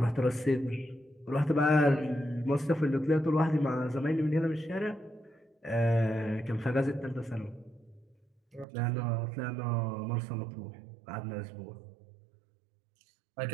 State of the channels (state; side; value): drops out; left; at 8.7 s